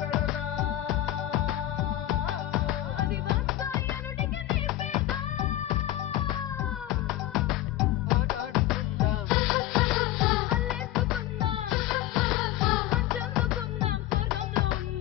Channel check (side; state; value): right; quieter; 14.6 dB